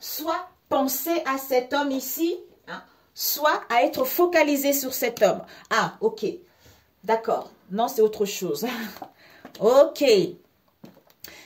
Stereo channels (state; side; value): identical; both; correlation 1.00